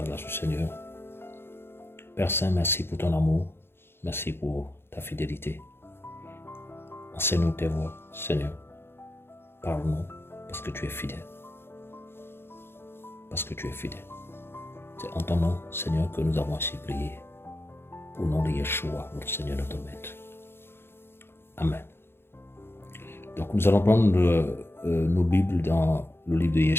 grâce du Seigneur. Père Saint, merci pour ton amour, merci pour ta fidélité. Enseigne-nous tes voies, Seigneur. Parle-nous, parce que tu es fidèle. Parce que tu es fidèle. C'est en ton nom, Seigneur, que nous avons ainsi prié. Au nom de Yeshua, notre Seigneur, notre Maître. Amen. Donc nous allons prendre nos Bibles dans le livre de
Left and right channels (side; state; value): right; late; 0.11 ms